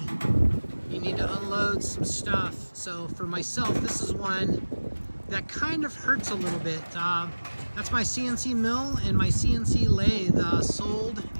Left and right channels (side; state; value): both; inverted; correlation -1.00